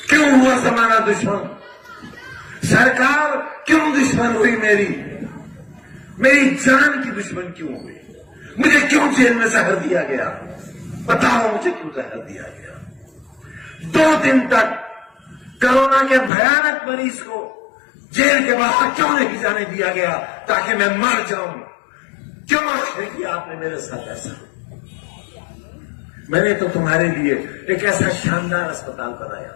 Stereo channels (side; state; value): right; drops out; at 16.3 s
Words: क्यों हुआ जमाना दुश्मन? सरकार क्यों दुश्मन हुई मेरी? मेरी जान की दुश्मन क्यों हुई? मुझे क्यों जेल में जहर दिया गया? बताओ मुझे क्यों जहर दिया गया? 2 दिन तक कोरोना के भयानक मरीज को जेल के बाहर क्यों नहीं जाने दिया गया ताकि मैं मर जाऊं? क्यों आखिर किया आपने मेरे साथ ऐसा? मैंने तो तुम्हारे लिए एक ऐसा शानदार अस्पताल बनाया